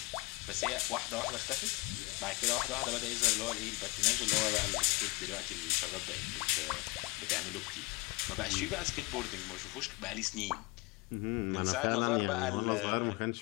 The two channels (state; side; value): quieter; right; 25.2 dB